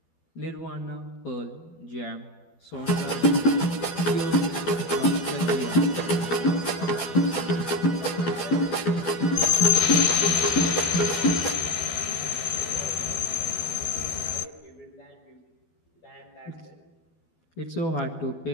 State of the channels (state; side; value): late; right; 12 ms